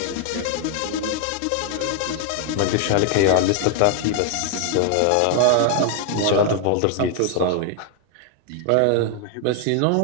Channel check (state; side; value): different; both; correlation 0.00